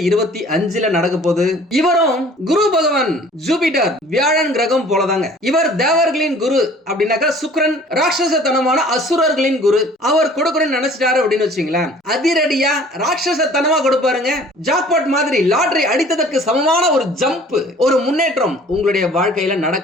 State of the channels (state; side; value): normal; both; correlation 0.51